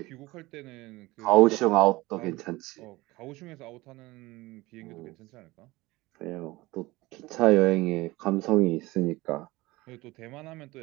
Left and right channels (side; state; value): left; quieter; 20.4 dB